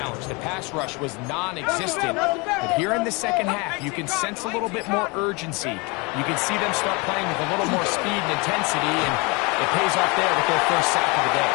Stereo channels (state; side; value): quieter; right; 28.1 dB